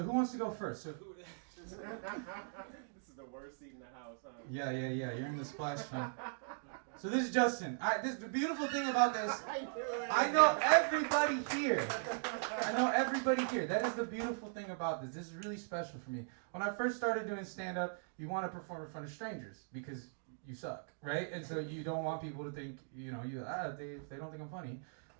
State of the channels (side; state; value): left; silent; digital silence